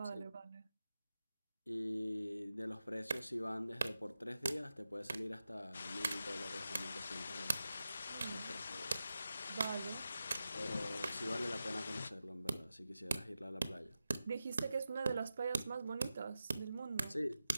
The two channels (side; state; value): both; inverted; correlation -0.92